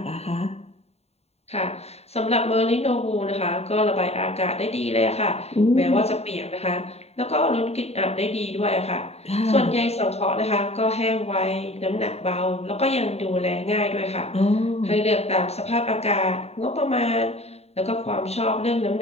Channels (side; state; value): right; late; 0.30 ms